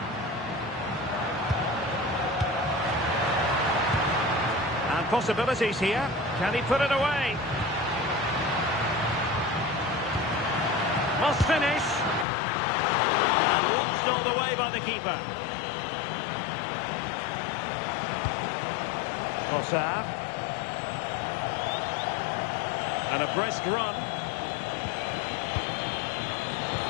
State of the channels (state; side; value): drops out; right; at 12.2 s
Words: And possibilities here. Can he put it away? Must finish. And watched all the way by the keeper. Trossard. And a brisk run.